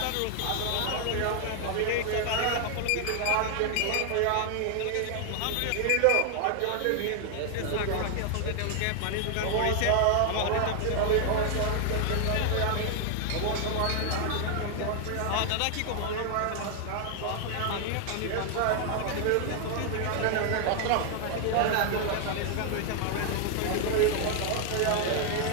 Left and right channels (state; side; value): different; both; correlation 0.00